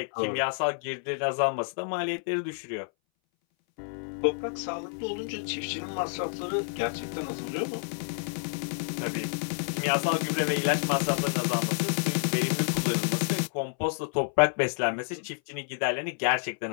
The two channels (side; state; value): right; silent; 58 dB below the other